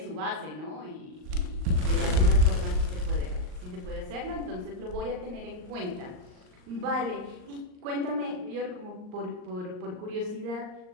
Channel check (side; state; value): left; late; 39 ms